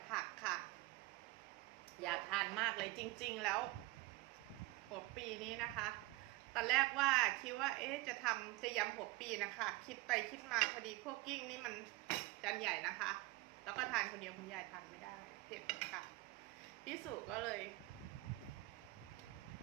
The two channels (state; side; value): quieter; left; 20.3 dB